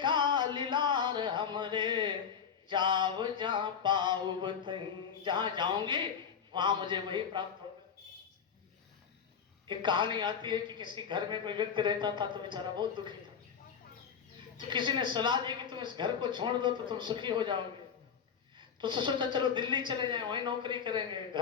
लीलार हमरे, जाव जहां पाऊ बतई। जहां जाऊंगी वहां मुझे वही प्राप्त होगा। एक कहानी आती है कि किसी घर में कोई व्यक्ति रहता था तो बेचारा बहुत दुखी था। तो किसी ने सलाह दी कि तुम इस घर को छोड़ दो तो तुम सुखी हो जाओगे। तो सोचा चलो दिल्ली चले जाएं, वहीं नौकरी करेंगे,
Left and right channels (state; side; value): quieter; right; 7.1 dB